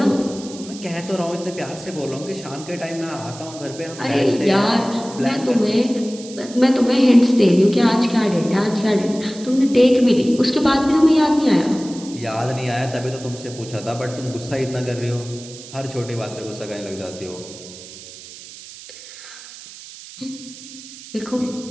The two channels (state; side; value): noise; right; hiss, 16 dB below the sound